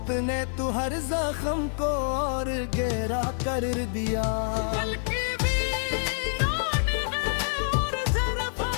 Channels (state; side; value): silent; right; digital silence